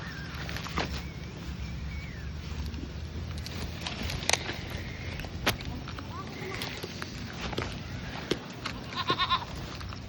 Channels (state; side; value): identical; both; correlation 1.00